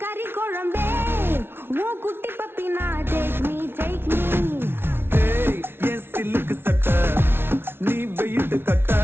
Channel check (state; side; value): late; left; 0.11 ms